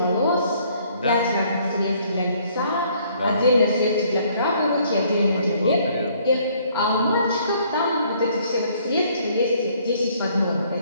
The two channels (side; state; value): both; inverted; correlation -0.63